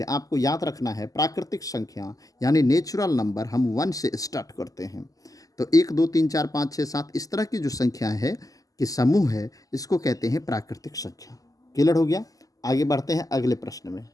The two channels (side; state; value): right; late; 0.17 ms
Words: आपको याद रखना है प्राकृतिक संख्या यानी नेचुरल नंबर हम 1 से स्टार्ट करते हैं। तो 1, 2, 3, 4, 5, 6, 7 इस तरह की जो संख्या है कि समूह है, इसको कहते हैं प्राकृतिक संख्या। क्लियर हो गया? आगे बढ़ते हैं अगले प्रश्न में।